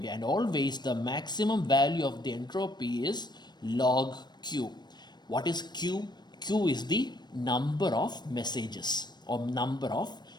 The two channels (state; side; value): late; right; 0.21 ms